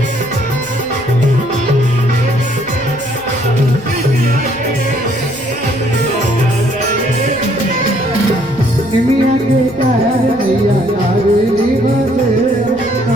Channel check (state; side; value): noise; left; rumble, 23 dB below the sound